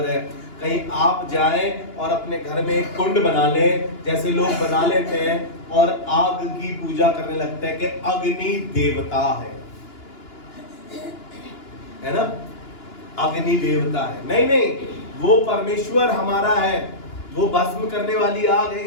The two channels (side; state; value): right; late; 2.9 ms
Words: है। कहीं आप जाएं और अपने घर में एक कुंड बना लें, जैसे लोग बना लेते हैं, और आग की पूजा करने लगते हैं कि अग्नि देवता है ना, अग्नि देवता है। नहीं नहीं, वो परमेश्वर हमारा है, वो भस्म करने वाली आग